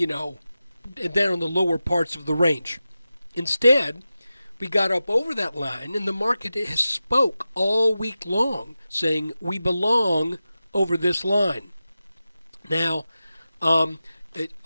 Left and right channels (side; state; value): both; inverted; correlation -0.94